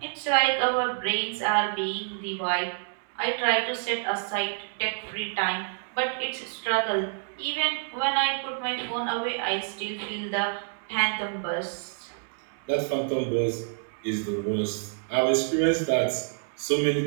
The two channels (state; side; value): silent; left; 59 dB below the other